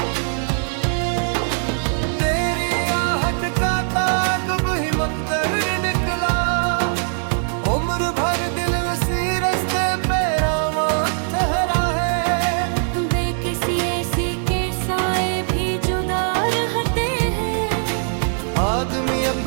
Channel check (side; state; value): left; silent; 65 dB below the other